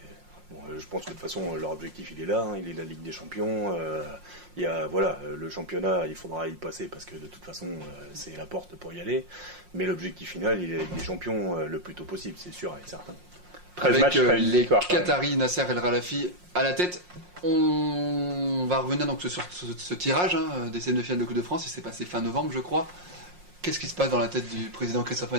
Bon, je pense que de toute façon leur objectif il est là, il est la Ligue des Champions. Il y a le championnat, il faudra y passer parce que de toute façon c'est la porte pour y aller. Mais l'objectif final, il est la Ligue des Champions le plus tôt possible, c'est sûr et certain. 13 Avec matchs, 13 les victoires. Qataris, Nasser El Khelaïfi à la tête. On va revenir donc sur ce tirage des scènes de finale de Coupe de France. Il s'est passé fin novembre, je crois. Qu'est-ce qui se passe dans la tête du président Christophe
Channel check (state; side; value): late; left; 5.6 ms